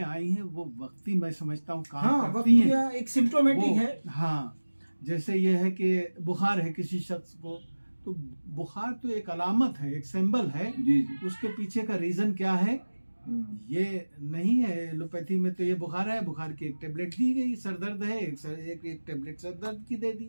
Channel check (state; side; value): inverted; both; correlation -1.00